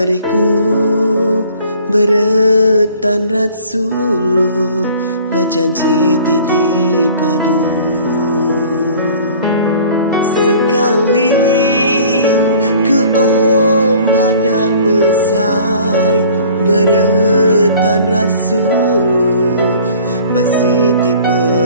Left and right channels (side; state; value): both; inverted; correlation -0.50